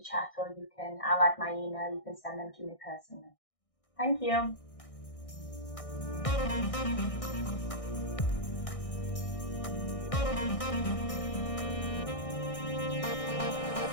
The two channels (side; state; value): right; late; 1.6 ms